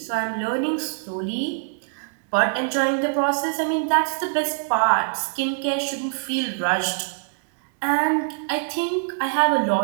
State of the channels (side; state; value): left; silent; digital silence